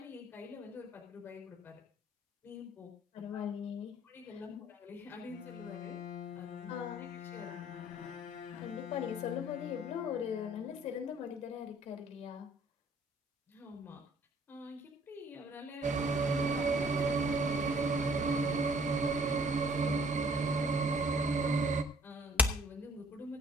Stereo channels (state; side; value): normal; both; correlation 0.58